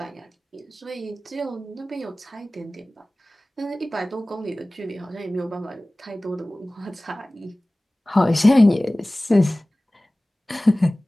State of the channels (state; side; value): normal; both; correlation 0.98